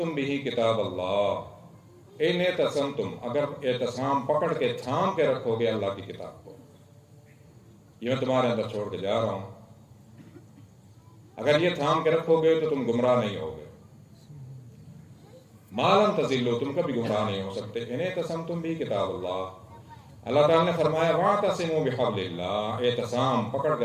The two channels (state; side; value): identical; both; correlation 1.00